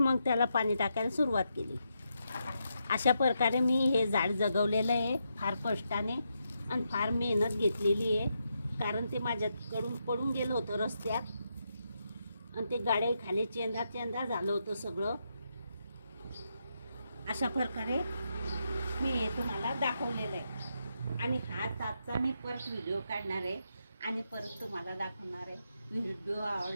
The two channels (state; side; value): inverted; both; correlation -0.82